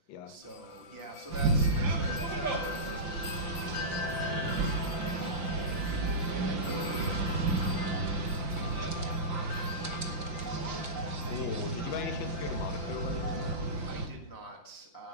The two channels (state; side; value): late; right; 5.8 ms